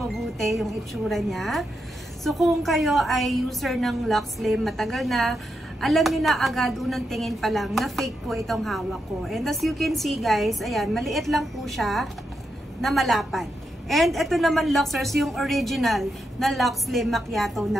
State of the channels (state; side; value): normal; both; correlation 0.84